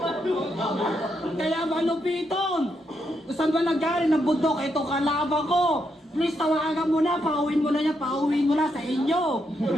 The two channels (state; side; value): normal; both; correlation 0.80